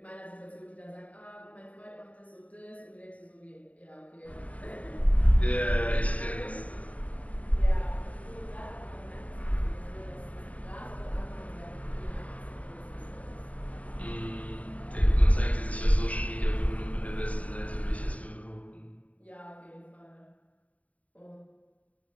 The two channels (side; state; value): right; late; 0.068 ms